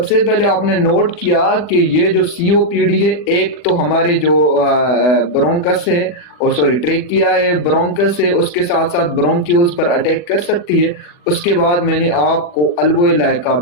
पहले आपने नोट किया कि ये जो सीओपीडी है, एक तो हमारे जो ब्रोंकस है और सॉरी ट्रेकिया है, ब्रोंकस है, उसके साथ साथ ब्रोंक्यूल्स पर अटैक कर सकती है। उसके बाद मैंने आपको अल्वोलाई का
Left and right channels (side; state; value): right; late; 40 ms